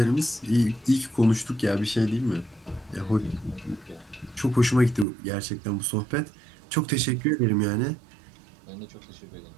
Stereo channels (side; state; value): left; drops out; at 5.1 s